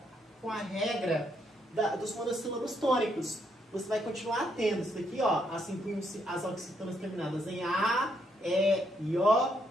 com a regra dos monossílabos tônicos. Você vai continuar tendo isso daqui, ó, acentuam-se as oxítonas terminadas em A, E e O,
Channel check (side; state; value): both; normal; correlation 0.75